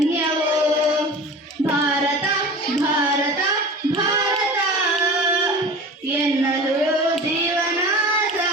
ಭಾರತ ಭಾರತ ಭಾರತ ಎನ್ನಲು ಜೀವನ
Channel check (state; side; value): normal; both; correlation 0.36